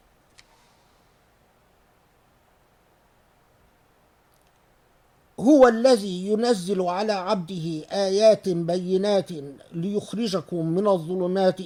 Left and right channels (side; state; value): both; identical; correlation 1.00